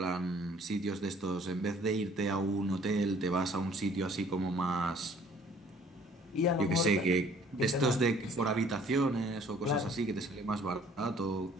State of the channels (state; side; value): normal; both; correlation 0.56